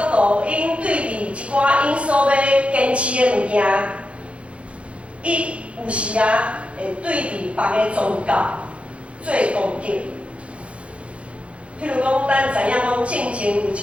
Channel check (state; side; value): late; left; 0.061 ms